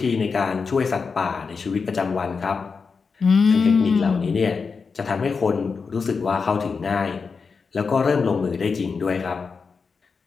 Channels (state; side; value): quieter; right; 5.1 dB